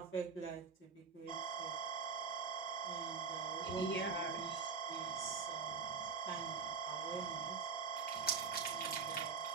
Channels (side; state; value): left; quieter; 5.5 dB